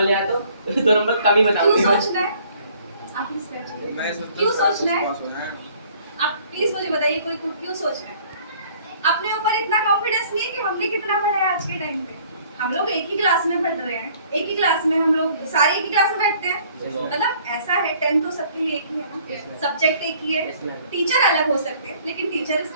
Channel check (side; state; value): both; inverted; correlation -0.57